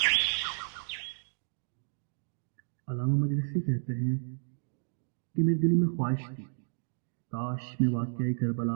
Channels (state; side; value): silent; left; digital silence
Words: علامہ مجلسی کہتے ہیں کہ میرے دل میں خواہش تھی کاش میں واقعہ